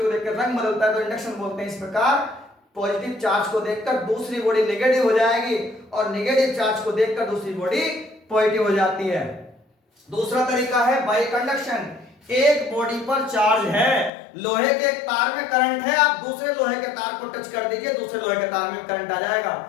को देख कर रंग बदलता है तो इंडक्शन बोलते हैं। इस प्रकार पॉजिटिव चार्ज को देखकर दूसरी बॉडी नेगेटिव हो जाएगी और नेगेटिव चार्ज को देखकर दूसरी बॉडी पॉजिटिव हो जाती है। दूसरा तरीका है बाई कंडक्शन। एक बॉडी पर चार्ज है, लोहे के एक तार में करंट है, आप दूसरे लोहे के तार को टच कर दीजिए, दूसरे लोहे के तार में करंट आ जाएगा।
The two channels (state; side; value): drops out; right; at 14.1 s